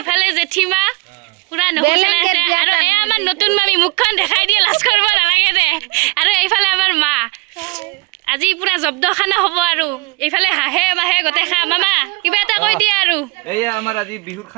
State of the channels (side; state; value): left; quieter; 25.2 dB